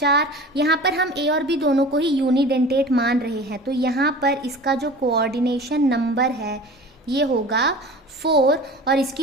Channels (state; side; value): normal; both; correlation 0.39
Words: यहाँ पर हम A और B दोनों को ही यूनिडेंटेट मान रहे हैं, तो यहाँ पर इसका जो कोऑर्डिनेशन नंबर है ये होगा 4 और